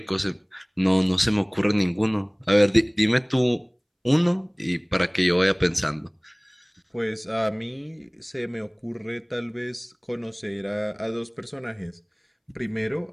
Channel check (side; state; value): both; identical; correlation 1.00